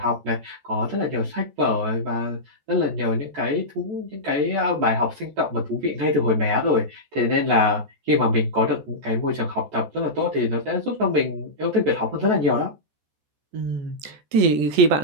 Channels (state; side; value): late; left; 14 ms